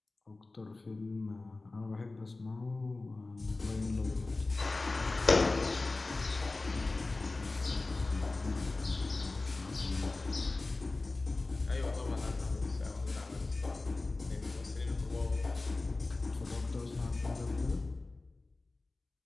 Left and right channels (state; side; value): quieter; right; 3.3 dB